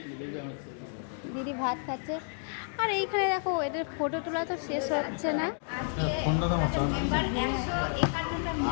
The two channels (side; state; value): right; silent; 56 dB below the other